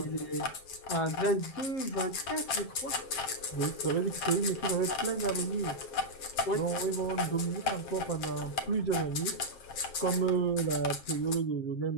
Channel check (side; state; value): right; late; 7.6 ms